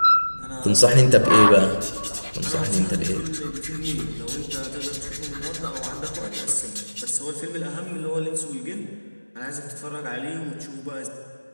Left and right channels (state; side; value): inverted; both; correlation -1.00